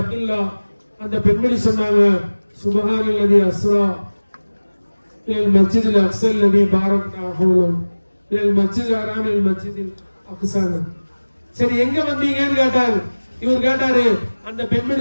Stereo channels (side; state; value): both; inverted; correlation -1.00